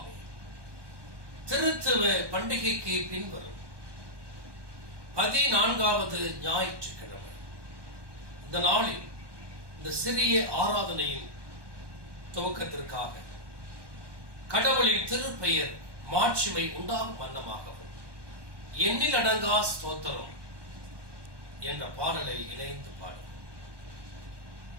திருத்துவ பண்டிகைக்கு பின்வரும் 14வது ஞாயிற்றுக்கிழமை. இந்த நாளில் இந்த சிறிய ஆராதனையின் துவக்கத்திற்காக கடவுளின் திருப்பெயர் மாட்சிமை உண்டாகும் வண்ணமாகவும் எண்ணில் அடங்கா ஸ்தோத்திரம் என்ற பாடலை இணைந்து பாடும்.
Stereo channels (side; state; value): left; late; 1.2 ms